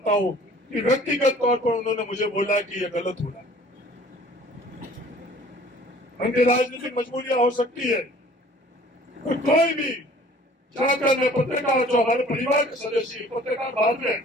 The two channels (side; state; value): both; normal; correlation 0.51